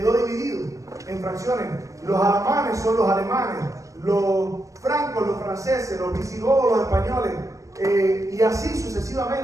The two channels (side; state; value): left; late; 0.16 ms